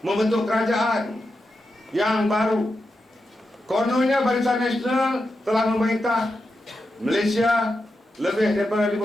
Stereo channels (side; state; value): both; normal; correlation 0.88